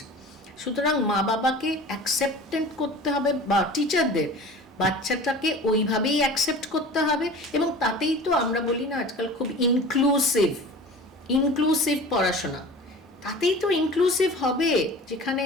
সুতরাং মা বাবাকে অ্যাকসেপ্টেন্ট করতে হবে, বা টিচারদের বাচ্চাটাকে ওইভাবেই অ্যাকসেপ্ট করতে হবে। এবং তাতেই তো আমরা বলি না আজকাল খুব ইনক্লুসিভ পড়াশোনা, তাতেই তো ইনক্লুসিভ হবে। যেখানে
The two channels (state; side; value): normal; both; correlation 0.39